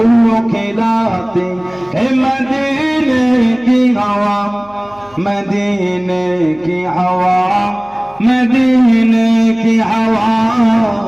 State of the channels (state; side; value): noise; right; hum, 27 dB below the sound